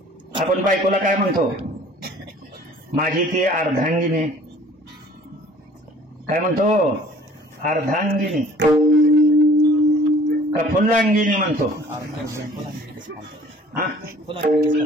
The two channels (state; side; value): normal; both; correlation 0.52